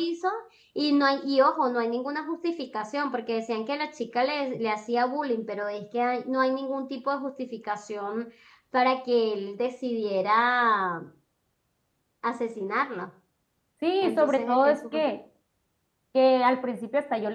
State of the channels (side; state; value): both; identical; correlation 1.00